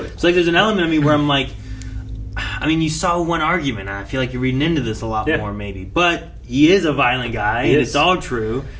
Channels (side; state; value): both; identical; correlation 1.00